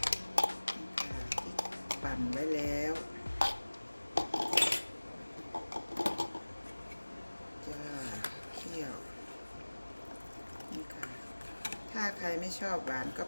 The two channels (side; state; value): both; inverted; correlation -1.00